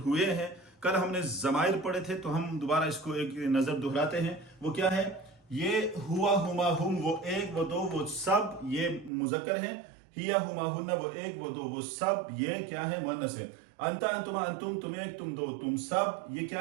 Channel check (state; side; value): drops out; left; at 9.1 s